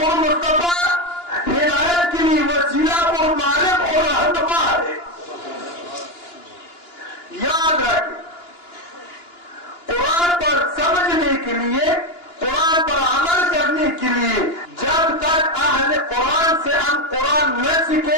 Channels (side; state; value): right; late; 2.9 ms